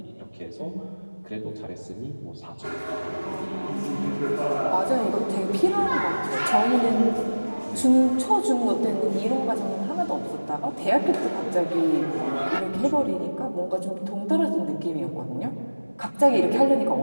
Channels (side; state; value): both; inverted; correlation -1.00